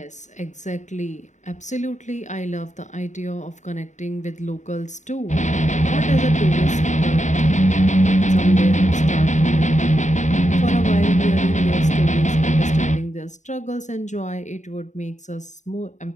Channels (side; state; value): right; late; 0.35 ms